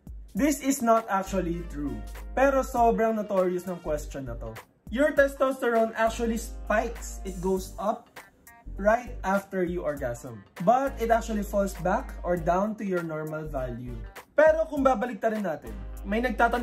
This is not actually true. Pero sobrang notorious ng question na to. Your testosterone actually spikes. It goes up right after you orgasm. But it actually falls back or down to your normal value. Pero kung babaliktarin natin, may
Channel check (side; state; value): both; identical; correlation 1.00